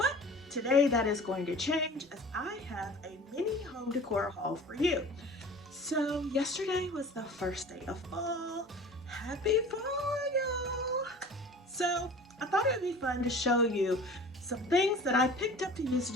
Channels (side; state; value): both; normal; correlation 0.42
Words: today that is going to change, as I have a mini home decor haul for you. So yesterday was the first day of fall. Happy fall, y'all! So I thought it would be fun to show you some things that I picked up to use to